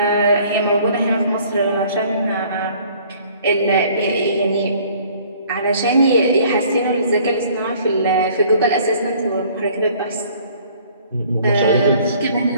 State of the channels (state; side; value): inverted; both; correlation -0.56